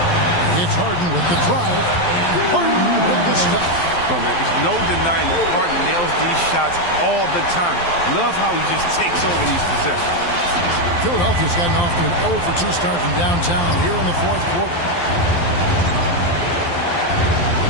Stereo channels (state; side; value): late; right; 12 ms